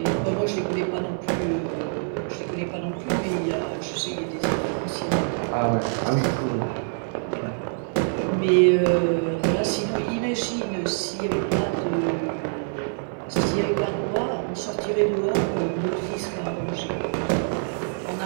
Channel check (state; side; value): silent; left; 62 dB below the other